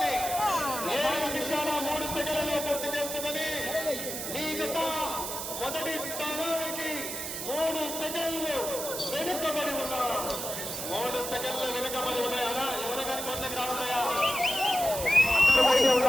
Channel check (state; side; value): noise; right; hiss, 5 dB below the sound